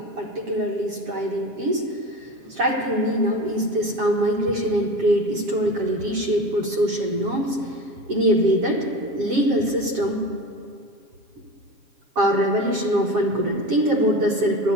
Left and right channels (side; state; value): left; late; 7.5 ms